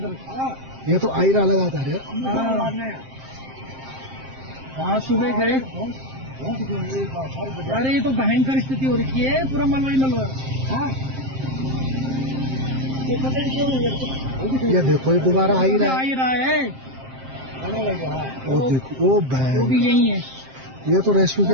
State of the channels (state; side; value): late; left; 7.6 ms